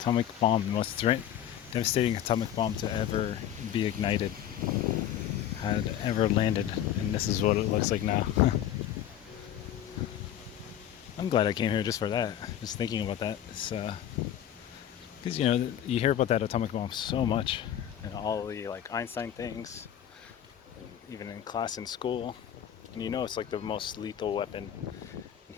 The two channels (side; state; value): right; quieter; 10.8 dB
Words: most devastating atomic bomb to ever be ignited, had ever landed, and this is what it looks like now. I'm glad I came here just for that. Just thinking about that. It's because you hear about that atomic bomb so much, and all the like Einstein things, even in class in school, and it's like the most lethal weapon in